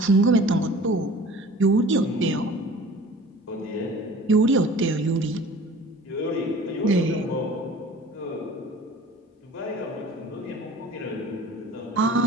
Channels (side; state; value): both; normal; correlation 0.45